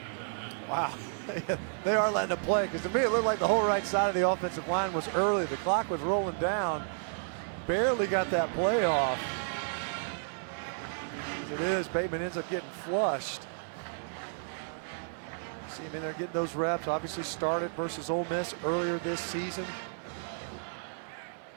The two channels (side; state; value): left; silent; digital silence